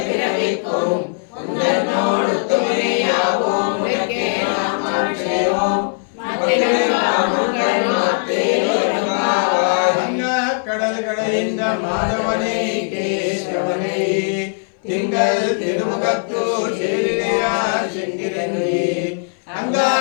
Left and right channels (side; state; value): right; silent; 61 dB below the other